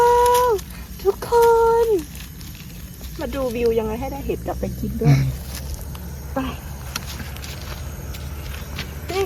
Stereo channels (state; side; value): identical; both; correlation 1.00